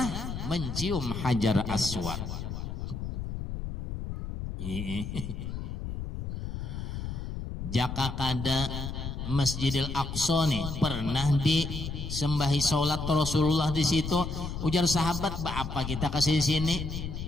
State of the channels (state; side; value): noise; left; rumble, 6 dB below the sound